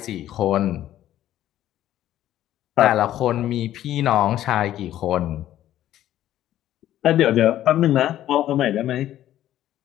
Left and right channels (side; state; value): right; quieter; 12.7 dB